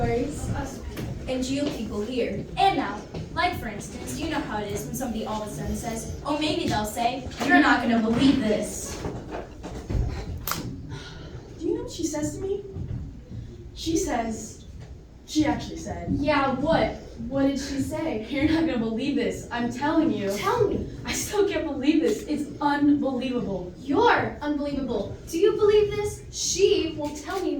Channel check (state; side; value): identical; both; correlation 1.00